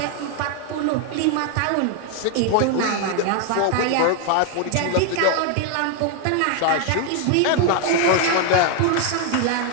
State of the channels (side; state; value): both; different; correlation 0.01